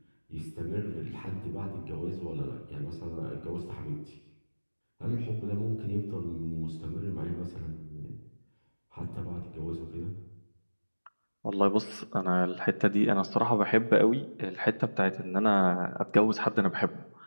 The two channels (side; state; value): both; inverted; correlation -1.00